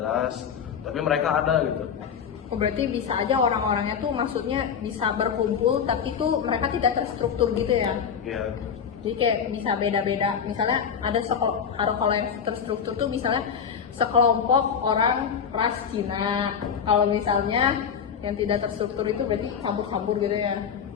Tapi mereka ada gitu. Oh, berarti bisa aja orang-orangnya tuh maksudnya bisa berkumpul tapi tuh mereka tidak terstruktur gitu ya? Iya. Jadi kayak bisa beda-beda. Misalnya ada kalau yang terstruktur tuh misalnya sekelompok orang ras Cina. Kalau misalnya yang tidak terstruktur itu berarti kabur-kabur gitu ya?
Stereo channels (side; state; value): right; quieter; 7.3 dB